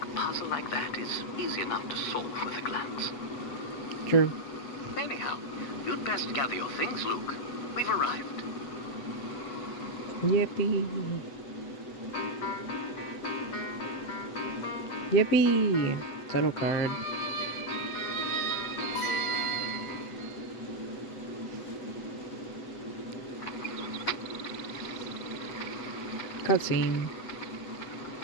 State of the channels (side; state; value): right; late; 8.2 ms